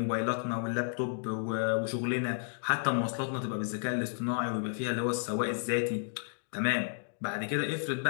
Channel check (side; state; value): right; silent; digital silence